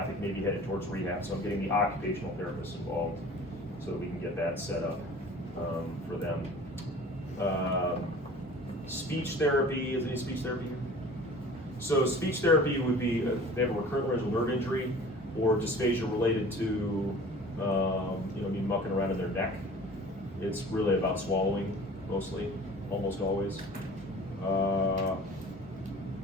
may be headed towards rehab. So I'm getting the occupational therapists involved so that we can get that set up for them. Speech therapy. Is any speech therapy here? So speech therapy would be they have a recurrent laryngeal nerve injury or dysphagia related to me mucking around in their neck. It's really about swallowing mostly, almost always.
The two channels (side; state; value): both; normal; correlation 0.44